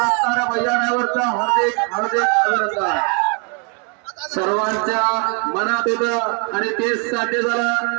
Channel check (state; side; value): quieter; left; 36.8 dB